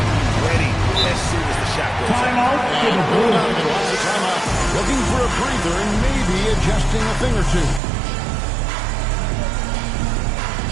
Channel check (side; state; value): left; drops out; at 7.8 s